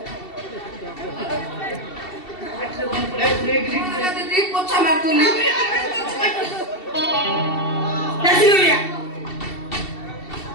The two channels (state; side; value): late; right; 2.7 ms